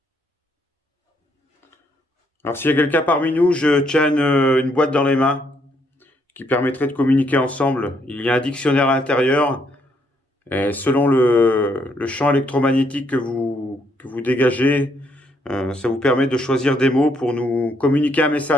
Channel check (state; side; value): normal; both; correlation 0.72